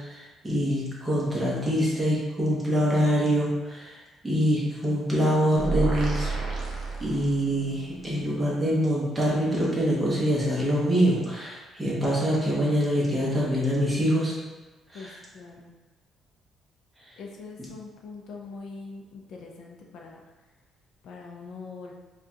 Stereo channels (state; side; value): normal; both; correlation 0.76